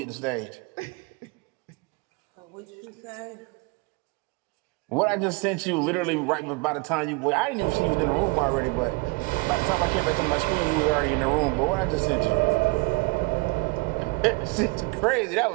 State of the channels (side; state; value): left; quieter; 26.9 dB